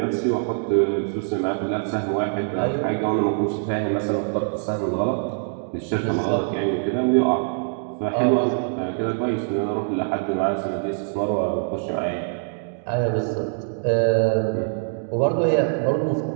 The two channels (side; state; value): left; silent; digital silence